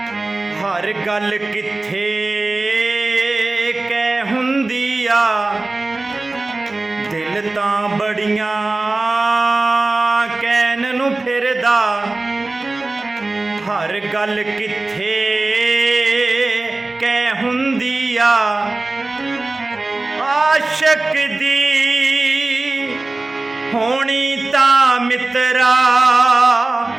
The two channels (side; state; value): left; quieter; 3.1 dB